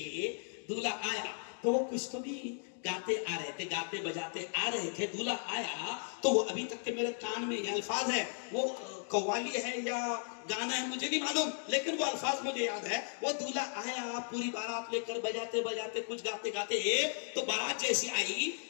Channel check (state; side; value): silent; right; 54 dB below the other